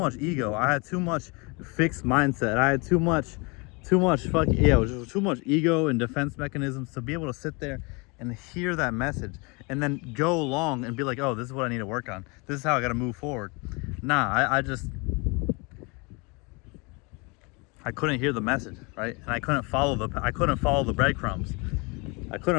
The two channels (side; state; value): right; quieter; 29.1 dB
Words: ego. I had too much fixed mindset. I had too much it was just too much ego and defense mechanisms to be able to sit there and hear that message and then go along and be like, oh, this is what I need to work on. This is how I got to move forward. Nah, I couldn't hear the message, right? And I couldn't follow the breadcrumbs. I